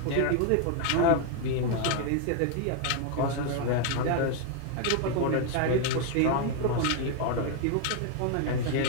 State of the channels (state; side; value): different; both; correlation 0.00